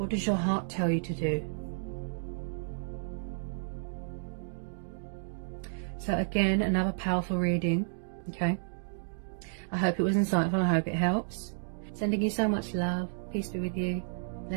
does your heart tell you to do? So again, another powerful reading, okay? I hope it was insightful. I hope it helps. Sending you so much love. Peace be with you.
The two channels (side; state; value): left; silent; digital silence